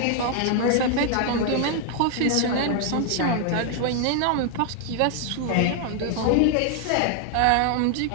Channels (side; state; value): both; different; correlation 0.00